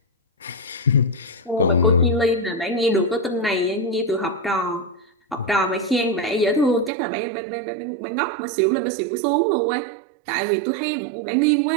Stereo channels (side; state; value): left; drops out; at 6.9 s